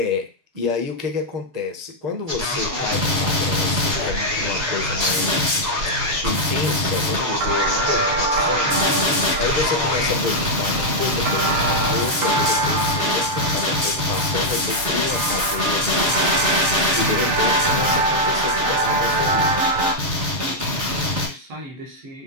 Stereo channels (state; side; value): late; left; 7.3 ms